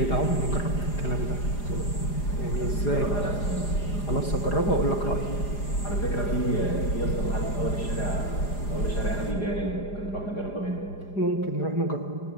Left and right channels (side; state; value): right; late; 4.9 ms